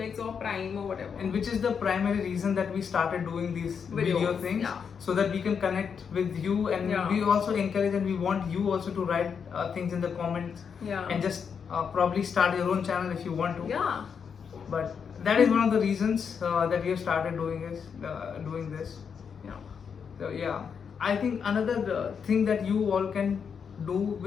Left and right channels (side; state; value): right; quieter; 6.7 dB